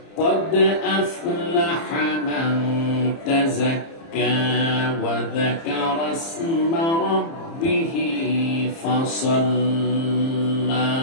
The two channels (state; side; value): late; right; 30 ms